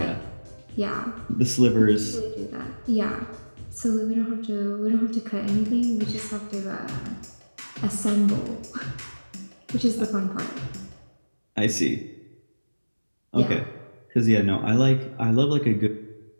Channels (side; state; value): both; inverted; correlation -1.00